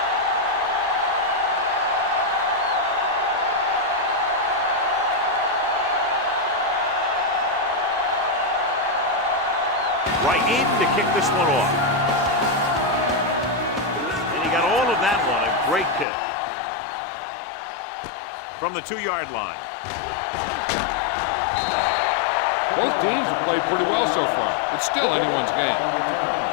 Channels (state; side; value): drops out; right; at 16.1 s